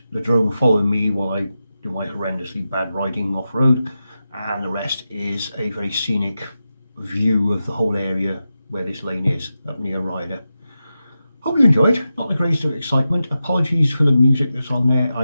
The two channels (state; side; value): inverted; both; correlation -0.90